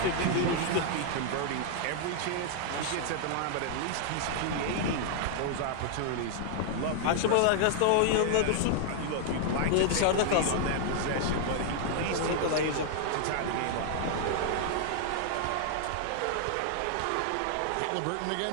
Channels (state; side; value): different; both; correlation 0.00